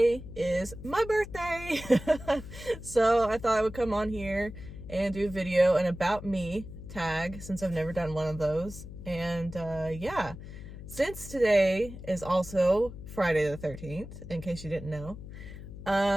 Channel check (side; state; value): left; noise; hum, 12 dB below the sound